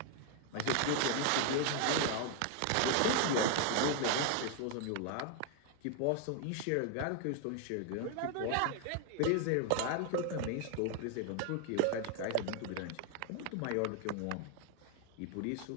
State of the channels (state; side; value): different; both; correlation 0.01